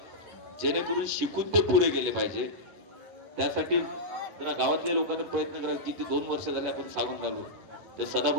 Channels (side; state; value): left; late; 10 ms